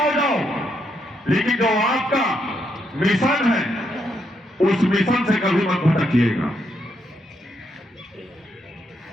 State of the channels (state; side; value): normal; both; correlation 0.78